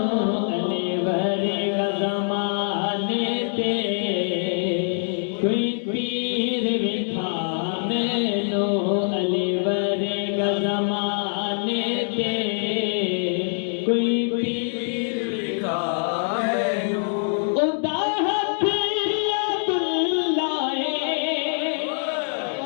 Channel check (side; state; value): right; silent; digital silence